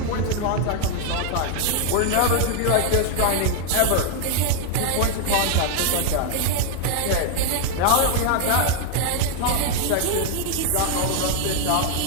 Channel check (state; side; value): different; both; correlation 0.00